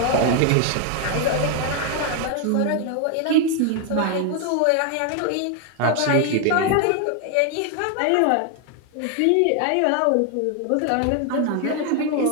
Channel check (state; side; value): different; both; correlation 0.01